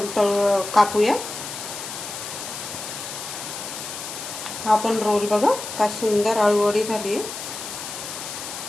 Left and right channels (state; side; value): noise; left; hiss, 8 dB below the sound